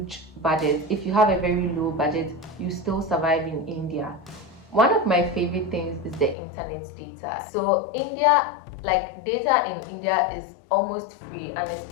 budget. If you have a very low budget, you still survive in India. One of my favorite things is the internet data. So India, like data in India is almost free,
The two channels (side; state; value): right; drops out; at 6.4 s